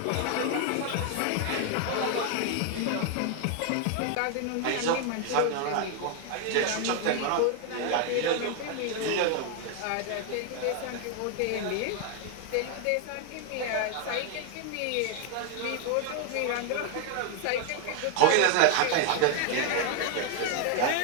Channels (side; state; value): both; different; correlation 0.00